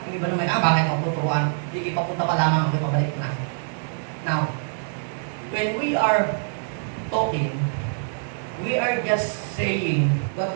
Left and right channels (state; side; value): silent; left; digital silence